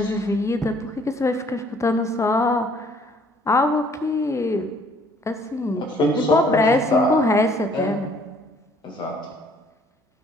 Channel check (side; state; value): both; normal; correlation 0.60